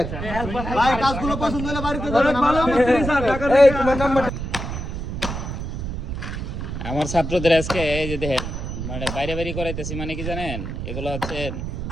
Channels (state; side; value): noise; right; rumble, 5 dB below the sound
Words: ভাই কাজগুলো পছন্দ হলে বাড়িতে যাবেন ভালো মিস্ত্রি স্যার টাকা এই তোমার নাম্বার আমার ছাত্রদের আজকে এই যে দেখেন মানে বাইরে বাইরে করাইতেছি মানে কি জানেন এগুলো হচ্ছে